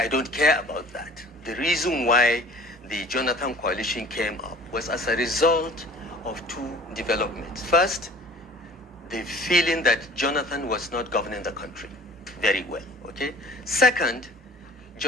don't care about that. The reason why the Jonathan coalition came up was as a result of two developments. First, the feeling that Jonathan was not governing the country very well, okay? Second,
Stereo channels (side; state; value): both; normal; correlation 0.47